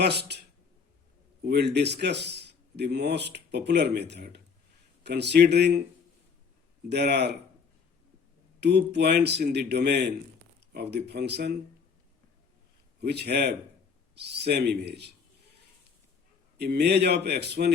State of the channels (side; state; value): right; quieter; 5.8 dB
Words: we'll discuss the most popular method, considering there are 2 points in the domain of the function which have same image. Image of x1